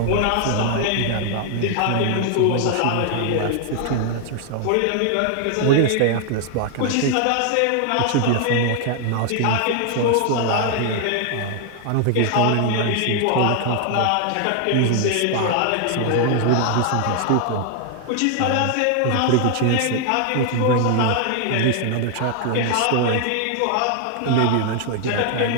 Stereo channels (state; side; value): different; both; correlation 0.00